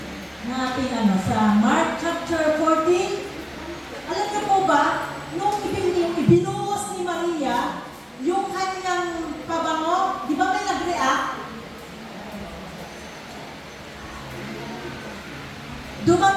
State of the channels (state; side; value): identical; both; correlation 1.00